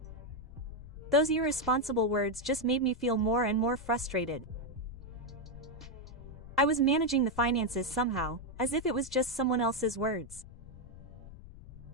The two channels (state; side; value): noise; left; rumble, 16 dB below the sound